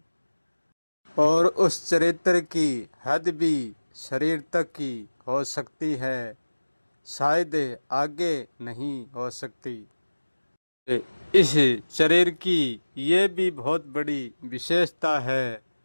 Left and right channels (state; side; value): inverted; both; correlation -1.00